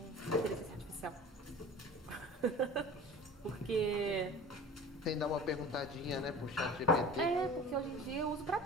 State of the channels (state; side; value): normal; both; correlation 0.39